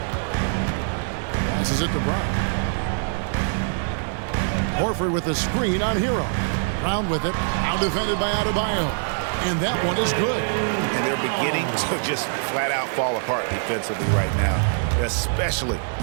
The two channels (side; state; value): left; silent; digital silence